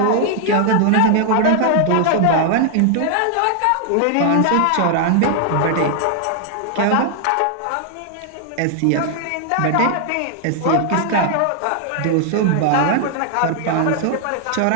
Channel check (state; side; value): different; both; correlation 0.00